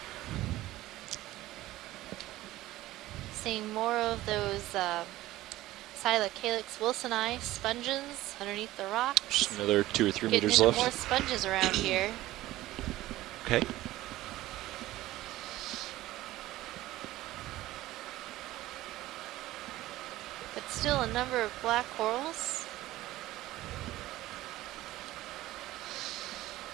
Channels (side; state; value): left; quieter; 16.3 dB